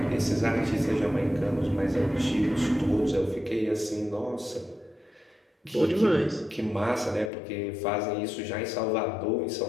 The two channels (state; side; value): drops out; right; at 7.3 s